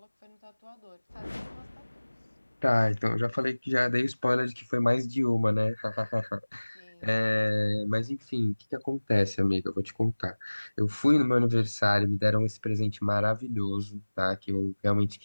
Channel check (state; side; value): inverted; both; correlation -1.00